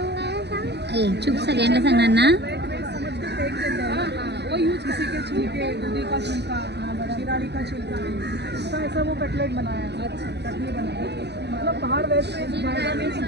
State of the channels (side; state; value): left; late; 0.49 ms